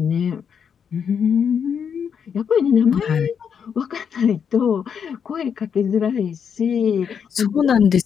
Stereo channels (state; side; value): quieter; right; 7.3 dB